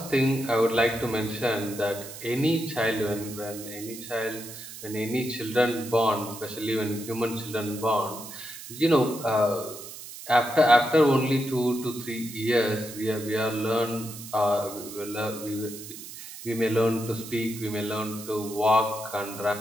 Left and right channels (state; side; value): noise; right; hiss, 13 dB below the sound